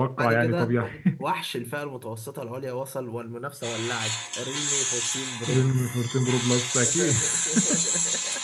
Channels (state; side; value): identical; both; correlation 1.00